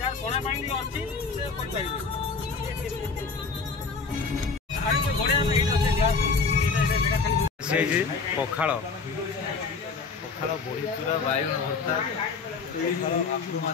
कोना पानी अछि से कोन पाइबे। आरे कोई घोड़े में एटा से ग्लास एटा जगह खाली से जी पखाल पखाल बड़ी चूरा बाइगण भर्ता आलू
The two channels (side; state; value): right; quieter; 4.7 dB